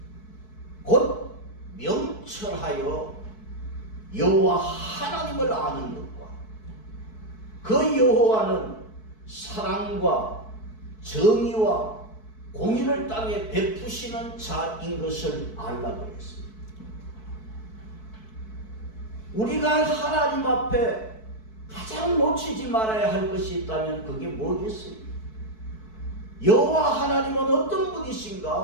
곧 명철하여 여호와 하나님을 아는 것과 그 여호와는 사랑과 정의와 공의를 땅에 베푸시는 자인 것을 알라 그랬습니다. 우리가 하나님 앞에 가장 놓치지 말아야 할 것이 있다면 그게 뭐겠어요? 여호와 하나님은 어떤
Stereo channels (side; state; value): right; late; 4.6 ms